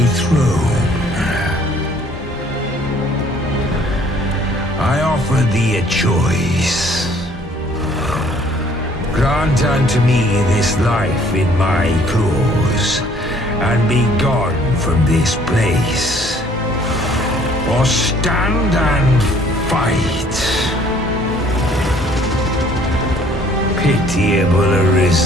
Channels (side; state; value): both; normal; correlation 0.59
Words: throne? I offer thee a choice. Grant unto me this life in my claws, and be gone from this place. Or stand and fight. Pitiable